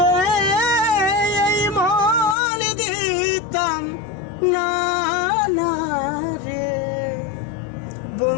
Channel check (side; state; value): right; drops out; at 2.4 s